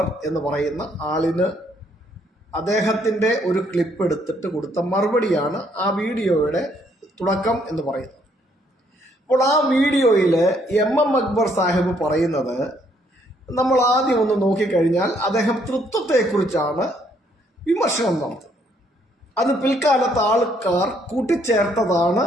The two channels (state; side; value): normal; both; correlation 0.69